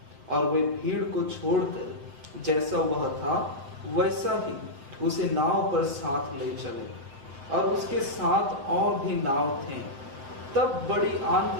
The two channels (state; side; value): late; left; 7.6 ms